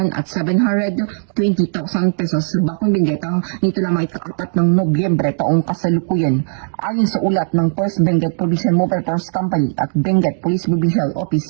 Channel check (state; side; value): silent; left; 64 dB below the other